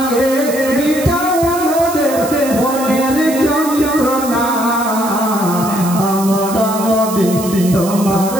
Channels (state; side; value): noise; right; hiss, 11 dB below the sound